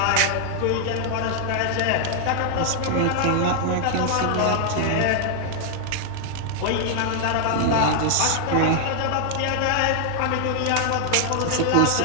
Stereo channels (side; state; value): both; different; correlation 0.00